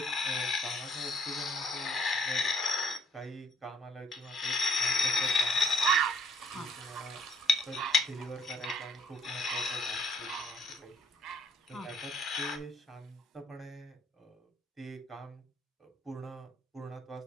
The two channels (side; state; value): both; normal; correlation 0.64